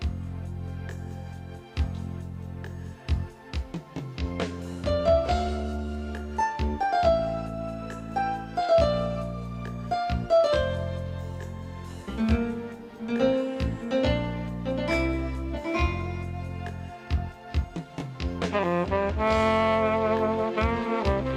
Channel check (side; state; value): both; identical; correlation 1.00